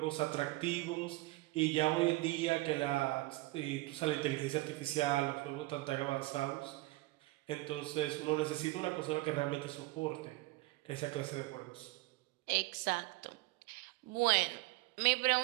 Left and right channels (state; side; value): quieter; left; 21.1 dB